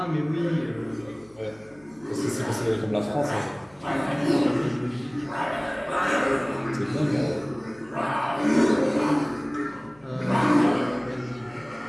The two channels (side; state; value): left; noise; hum, 30 dB below the sound